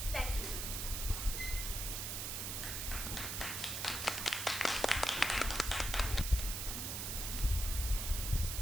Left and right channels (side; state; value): right; noise; hiss, 3 dB below the sound